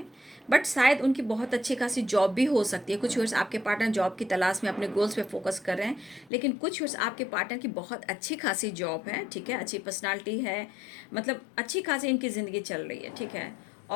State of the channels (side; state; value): right; drops out; at 6.3 s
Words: बट शायद उनकी बहुत अच्छी खासी जॉब भी हो सकती है। कुछ व्यूअर्स आपके पार्टनर जॉब की तलाश में अपने गोल्स पे फोकस कर रहे हैं, लेकिन कुछ व्यूअर्स आपके पार्टनर की बहुत अच्छी खासी जॉब है, ठीक है, अच्छी पर्सनालिटी है, मतलब अच्छी खासी इनकी ज़िंदगी चल रही है, ठीक है।